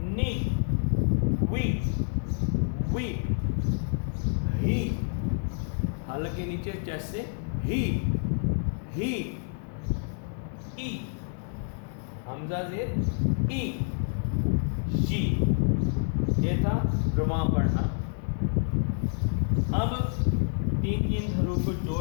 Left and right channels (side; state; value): right; silent; 59 dB below the other